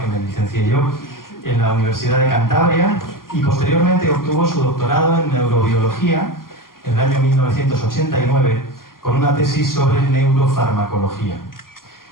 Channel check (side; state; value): right; late; 0.92 ms